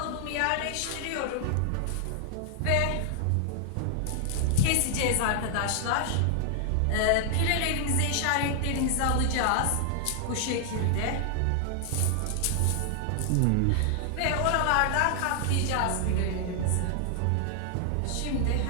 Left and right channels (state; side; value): different; both; correlation 0.00